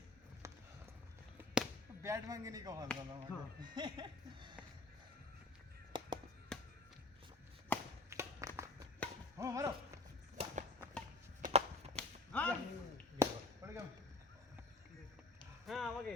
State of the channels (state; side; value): quieter; right; 3.3 dB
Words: ব্যাট ভাঙেনি কখন জানো হ্যাঁ মারো হ্যাঁ পড়ে গেল হ্যাঁ আমাকে